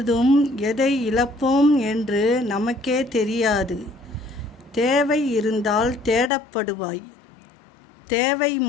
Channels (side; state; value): right; drops out; at 6.3 s